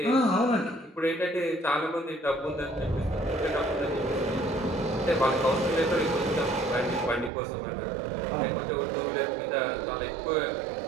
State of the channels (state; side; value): drops out; left; at 7.3 s